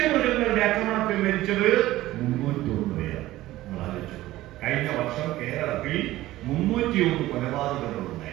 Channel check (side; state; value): left; quieter; 16.2 dB